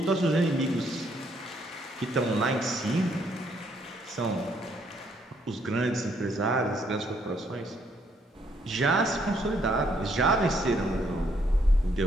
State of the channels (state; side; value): normal; both; correlation 0.70